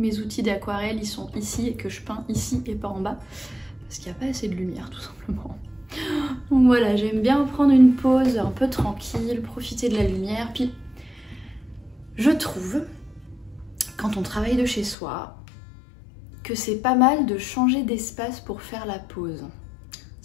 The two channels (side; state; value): right; drops out; at 15.0 s